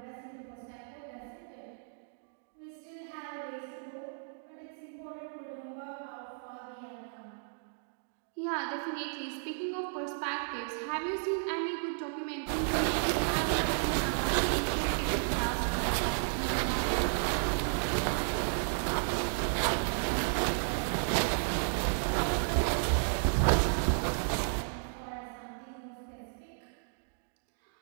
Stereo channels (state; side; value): silent; left; digital silence